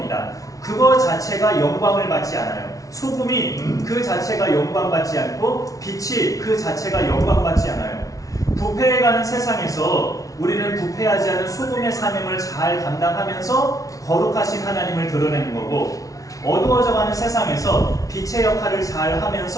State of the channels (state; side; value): late; right; 0.17 ms